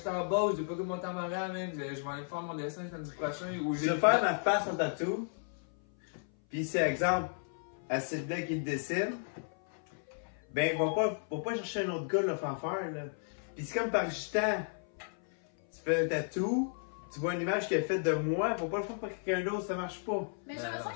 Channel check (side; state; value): right; silent; 55 dB below the other